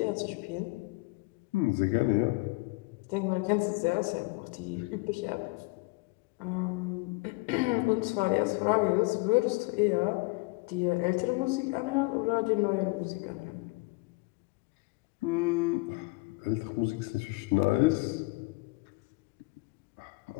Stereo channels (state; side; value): quieter; right; 25.0 dB